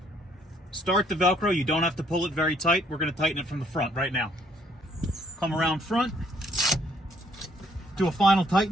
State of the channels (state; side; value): normal; both; correlation 0.65